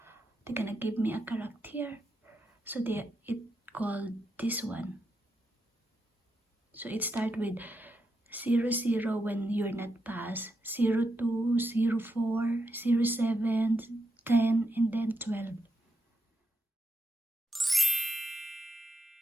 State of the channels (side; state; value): both; normal; correlation 0.84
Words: they're gonna give me a character. So it called this one. So it start with 00 when you're not passed, 02, 04, 07, 10, and then 12.